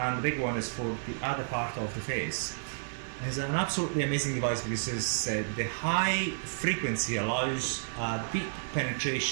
the big one is for the other part of the face. It's an absolutely amazing device because the high frequency allows deep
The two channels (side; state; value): left; silent; digital silence